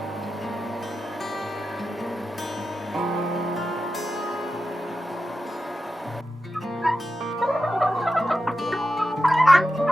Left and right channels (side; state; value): both; normal; correlation 0.91